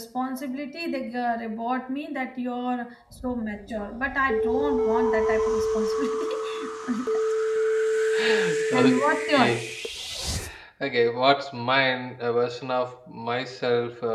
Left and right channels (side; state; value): both; identical; correlation 1.00